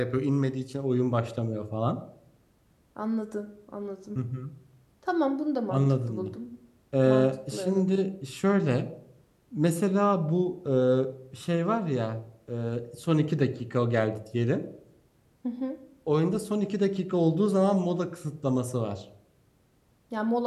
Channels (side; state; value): both; identical; correlation 1.00